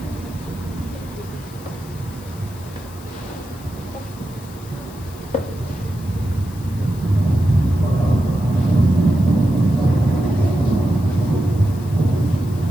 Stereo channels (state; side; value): noise; left; hiss, 22 dB below the sound